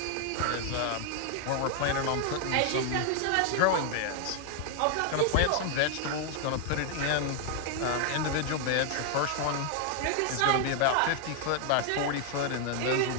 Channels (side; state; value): both; different; correlation 0.00